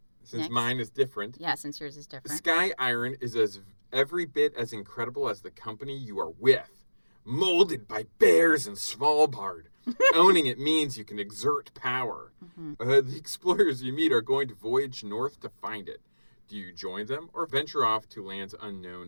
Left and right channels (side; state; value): both; inverted; correlation -1.00